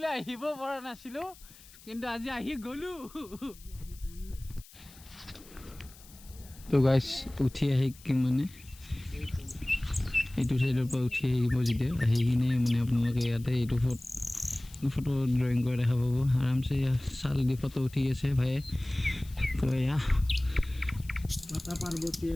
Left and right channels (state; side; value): noise; left; hiss, 22 dB below the sound